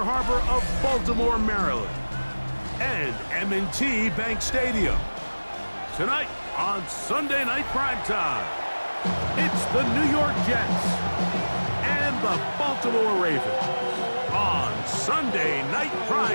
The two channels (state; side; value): inverted; both; correlation -1.00